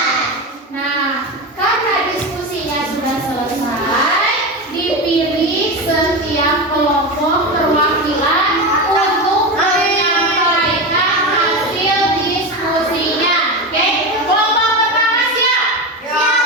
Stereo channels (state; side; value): normal; both; correlation 0.20